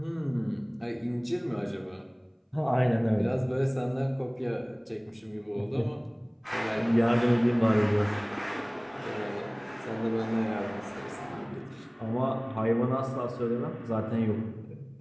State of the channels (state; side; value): identical; both; correlation 1.00